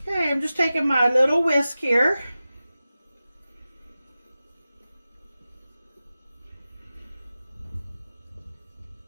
Okay, I'm just taking my little whisk here.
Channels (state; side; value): inverted; both; correlation -0.94